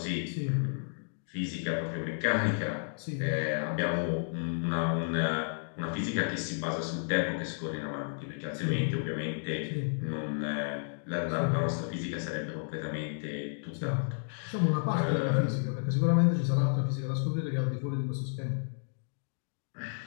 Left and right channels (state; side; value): silent; right; digital silence